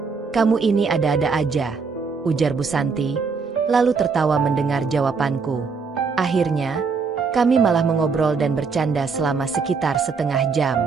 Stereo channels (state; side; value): quieter; left; 5.1 dB